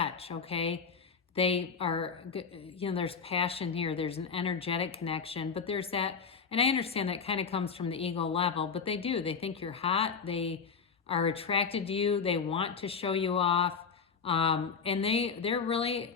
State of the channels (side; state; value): right; quieter; 5.7 dB